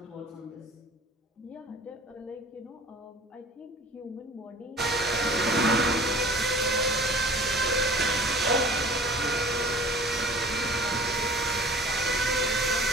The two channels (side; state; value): both; normal; correlation 0.46